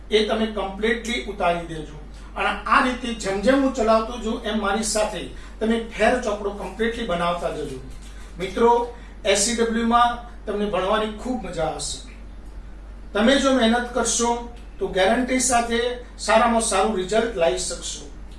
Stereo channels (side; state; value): both; identical; correlation 1.00